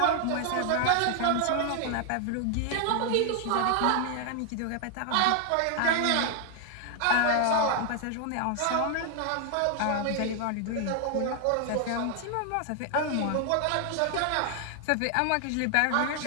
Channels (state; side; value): different; both; correlation 0.00